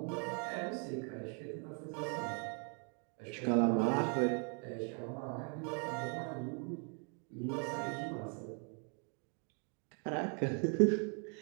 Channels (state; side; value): quieter; left; 39.7 dB